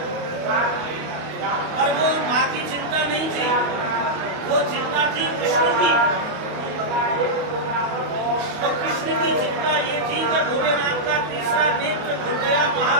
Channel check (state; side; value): late; left; 28 ms